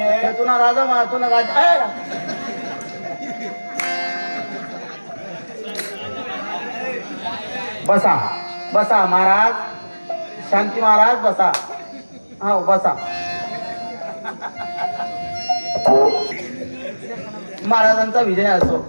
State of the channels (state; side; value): inverted; both; correlation -1.00